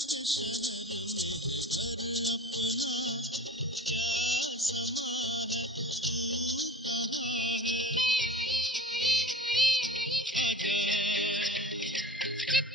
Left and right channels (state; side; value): normal; both; correlation 0.38